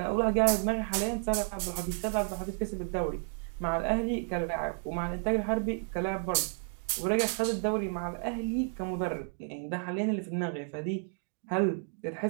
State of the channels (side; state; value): left; silent; 57 dB below the other